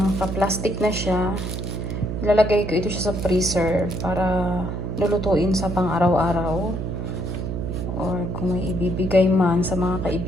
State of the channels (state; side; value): noise; right; hum, 4 dB below the sound